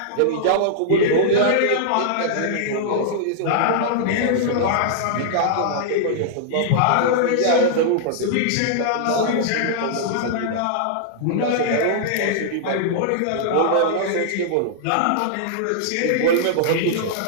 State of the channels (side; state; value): both; different; correlation -0.02